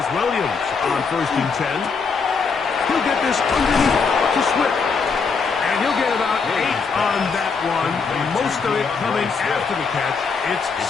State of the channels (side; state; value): right; quieter; 5.2 dB